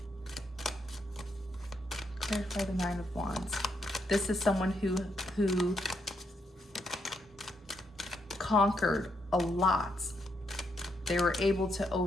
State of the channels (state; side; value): normal; both; correlation 0.78